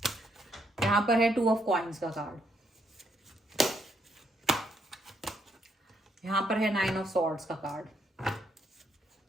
यहां पर है 2 ऑफ कॉइन्स का कार्ड, यहां पर है 9 ऑफ सॉर्ड्स का कार्ड,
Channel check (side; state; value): both; normal; correlation 0.74